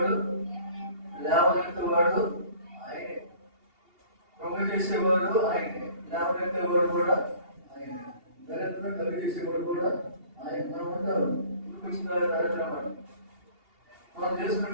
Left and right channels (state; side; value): late; left; 2.8 ms